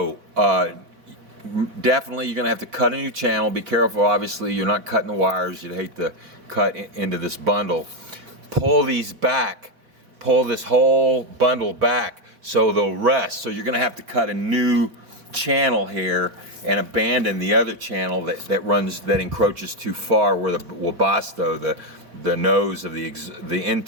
definitely you're going to have to cut a new channel. Be careful, obviously you're not cutting the wires. You'd hate to cut into this bundle. Pull these back, pull this whole bundle back so they'll rest. So you're going to have to cut a new channel here and abandon the other channel that encroaches too far, where the Webasto, the nose of the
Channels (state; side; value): late; left; 3.8 ms